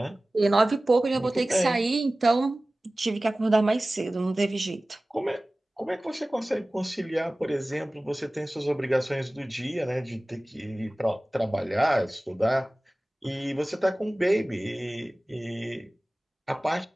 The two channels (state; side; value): normal; both; correlation 0.98